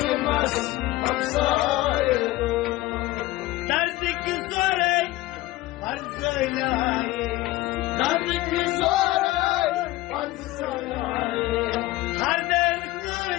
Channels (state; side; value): quieter; right; 17.8 dB